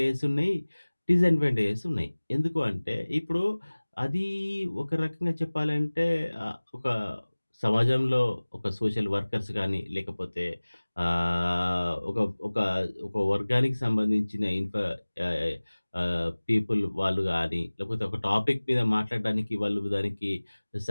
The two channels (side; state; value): both; inverted; correlation -1.00